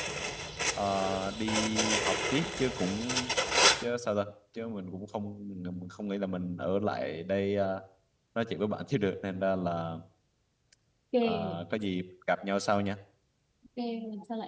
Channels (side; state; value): both; identical; correlation 1.00